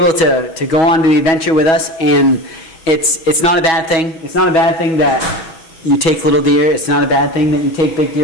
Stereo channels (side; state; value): right; late; 6.2 ms